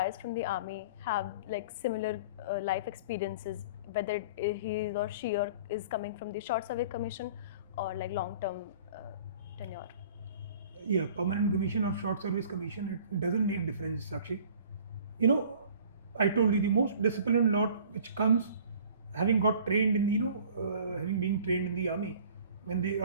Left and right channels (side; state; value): both; inverted; correlation -0.48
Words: from the army have like similar life experiences, whether he or she is coming from the short service commission or like long-term tenure? Yeah, permanent commission or short service commission, it doesn't make difference, Sakshi. I told you the most disciplined lot which comes having got trained in having been trained in the army, when the